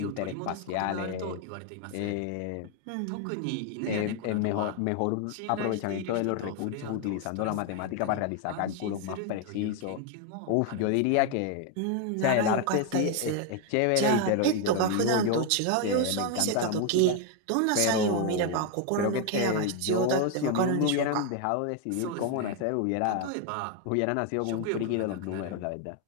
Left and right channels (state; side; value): different; both; correlation 0.01